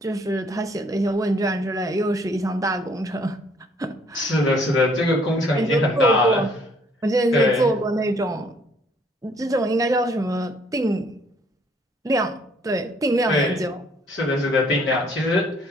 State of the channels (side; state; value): both; normal; correlation 0.63